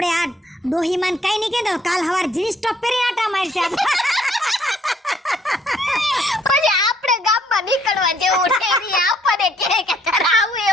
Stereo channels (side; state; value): both; normal; correlation 0.65